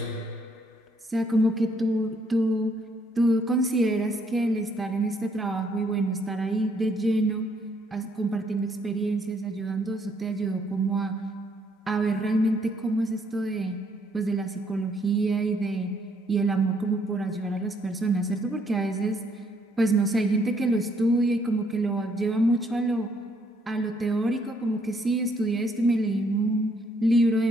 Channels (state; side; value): normal; both; correlation 0.69